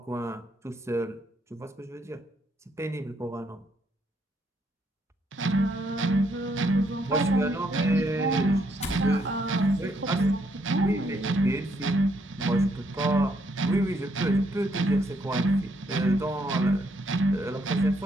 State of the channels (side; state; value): both; normal; correlation 0.72